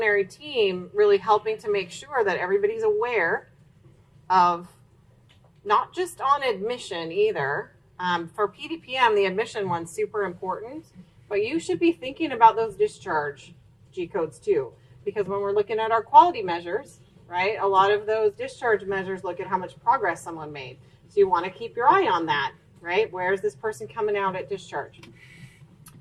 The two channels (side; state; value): both; identical; correlation 1.00